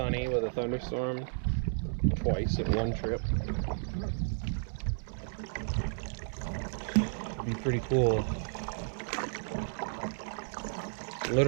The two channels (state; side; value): silent; left; 56 dB below the other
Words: with a thunderstorm twice in one trip. It'd be pretty cool.